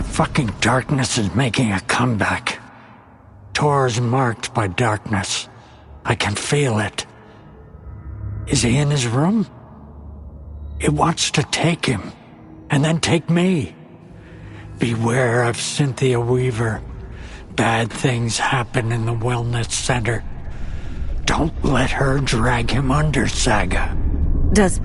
fucking Darkness is making a comeback. Tor's marked by darkness. I can feel it. Is he in his room? It wants to take him, and then take me. Beware of Cynthia Weaver. Bad things happen in the wellness center. Don't let her drag him under, Saga. Does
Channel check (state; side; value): identical; both; correlation 1.00